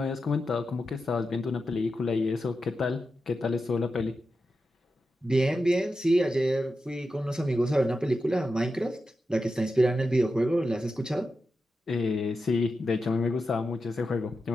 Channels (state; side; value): normal; both; correlation 0.90